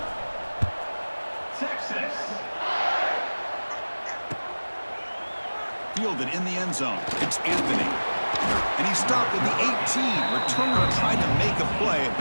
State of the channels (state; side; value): inverted; both; correlation -1.00